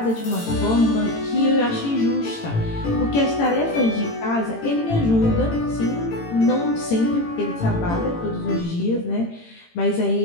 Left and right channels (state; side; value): late; right; 18 ms